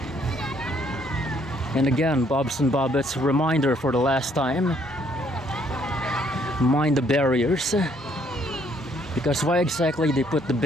And again, Bobs and Bobbets, reminder for the last time, mind the barriers. Because why exactly they put the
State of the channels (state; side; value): normal; both; correlation 0.66